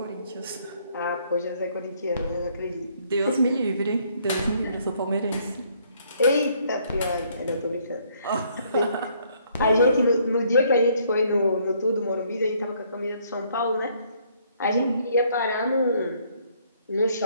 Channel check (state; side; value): inverted; both; correlation -0.66